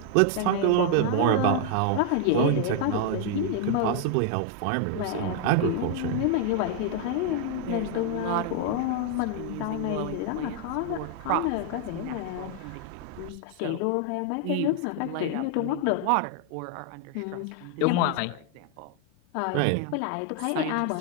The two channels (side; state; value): both; different; correlation 0.00